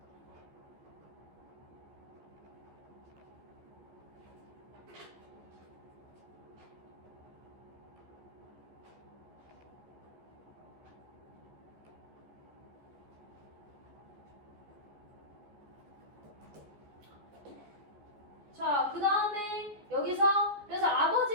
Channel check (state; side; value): late; left; 14 ms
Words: 자, 그 다음에 여기서 그래서